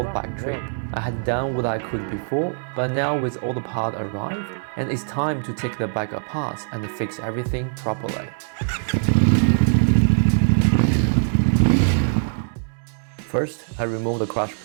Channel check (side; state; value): left; silent; digital silence